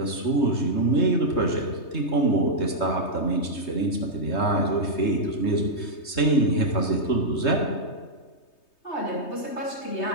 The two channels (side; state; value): right; late; 3.2 ms